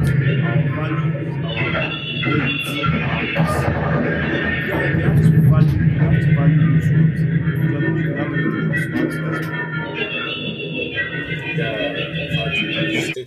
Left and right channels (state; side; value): identical; both; correlation 1.00